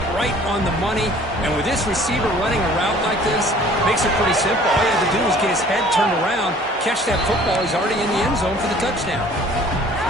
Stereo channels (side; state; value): both; normal; correlation 0.52